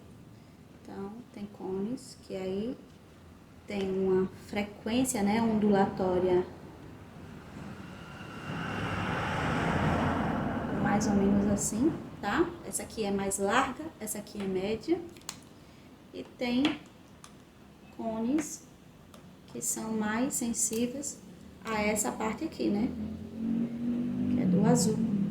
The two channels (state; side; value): identical; both; correlation 1.00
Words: Então, tem cones que aí tem uma frequência, né, ondulatória mais ou menos assim, tá? Essa aqui é mais larga, essa aqui é média. E tem cones que são mais sensíveis a essa parte aqui, né? Que é do azul.